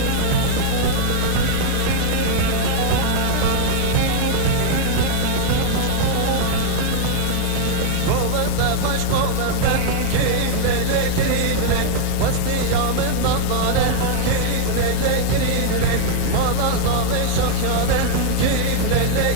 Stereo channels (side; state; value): both; different; correlation -0.01